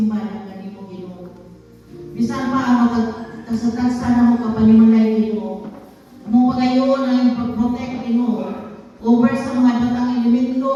ng kanimo Ginoo. Bisan pa ang magtagsa na mo kapanimalay Ginoo. Mo pagayon ang pag-protect Ginoo over sa mga batang elemento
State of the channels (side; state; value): both; identical; correlation 1.00